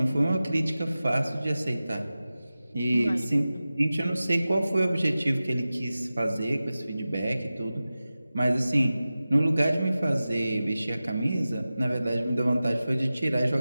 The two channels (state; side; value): inverted; both; correlation -0.95